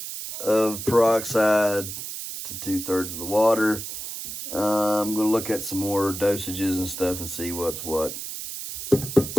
of peroxide to 2/3 of the water. I'm going to look at some more dosages and stuff and see what's what.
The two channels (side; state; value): right; noise; hiss, 8 dB below the sound